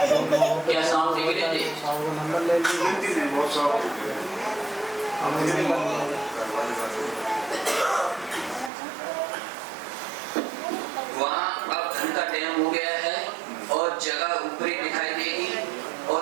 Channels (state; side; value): drops out; left; at 8.7 s